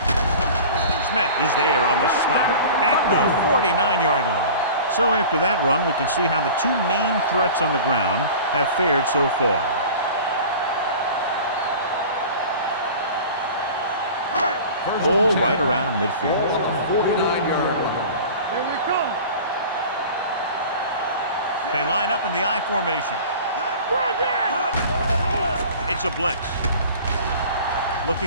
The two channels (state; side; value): inverted; both; correlation -0.40